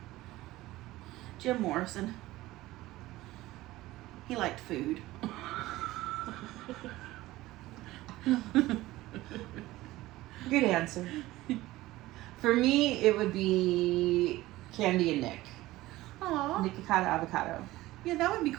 Jim Morrison. He liked food. Good answer. For me, it would be Candy and Nick. Aw. Nikocado avocado. Yeah, that would be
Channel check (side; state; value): left; quieter; 17.5 dB